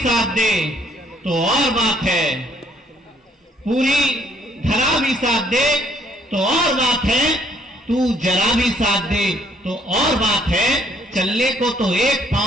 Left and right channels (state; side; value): normal; both; correlation 0.66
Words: दे तो और बात है। पूरी धरा भी साथ दे तो और बात है, तू जरा भी साथ दे तो और बात है। चलने को तो एक